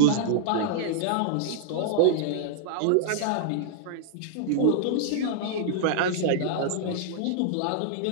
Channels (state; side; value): different; both; correlation -0.01